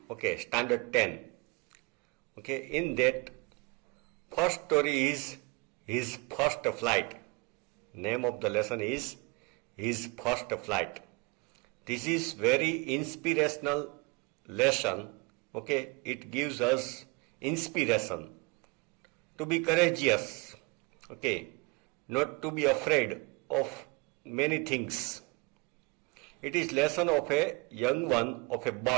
Okay, standard 10. Okay, in that first story is his first flight. Name of the lesson is his first flight. This is very inspirational lesson. Okay, it gives us inspiration to be courageous. Okay, not to be afraid of many things. It is lesson of a young one of a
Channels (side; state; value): left; quieter; 28.2 dB